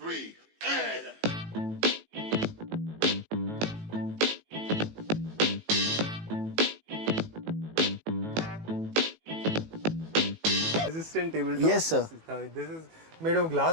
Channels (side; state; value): left; late; 18 ms